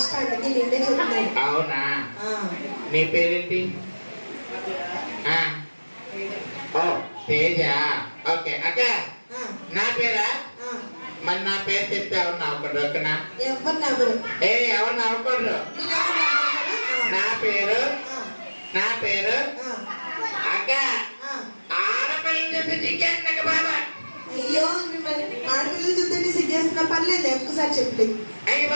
అందుకే నిన్నే చెప్తున్నాను. అవునా? నీ పేరేంటి? ఓ తేజ. ఓకే అక్క. నా పేరా? మరి నా పేరు చెప్తే ఎవరు నవ్వకూడదు ఓకేనా? ఎవరు నవ్వరు. ఎవరు నవ్వకూడదు. నా పేరు అక్క. ఆడపిల్లలు చెప్పి సిగ్గేస్తున్నా బాబా. అయ్యో మిమ్మల్ని ఆడపిల్లలు చూస్తే సిగ్గేస్తున్నా. పర్లేదు ఒక్కసారి చెప్పలేదు. అయ్యి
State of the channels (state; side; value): inverted; both; correlation -1.00